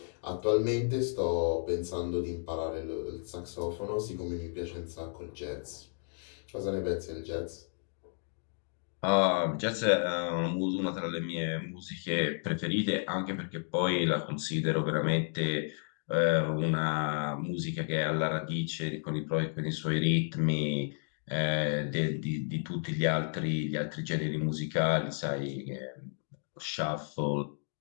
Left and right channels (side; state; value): right; silent; 56 dB below the other